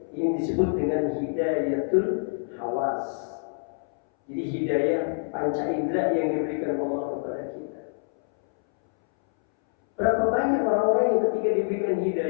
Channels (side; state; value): right; silent; 61 dB below the other